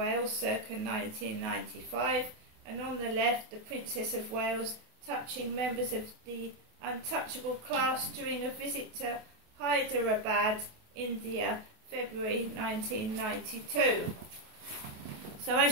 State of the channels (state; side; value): late; left; 28 ms